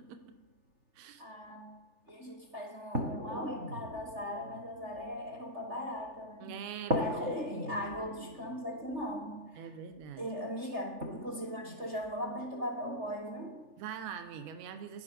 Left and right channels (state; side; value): late; left; 3.4 ms